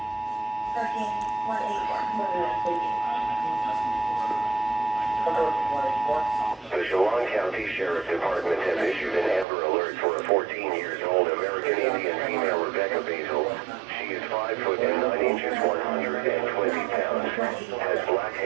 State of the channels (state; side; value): drops out; left; at 9.5 s